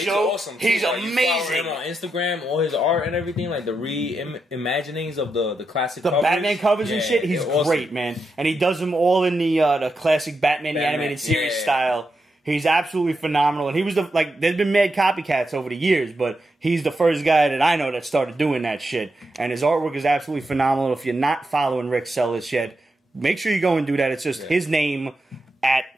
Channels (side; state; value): both; normal; correlation 0.85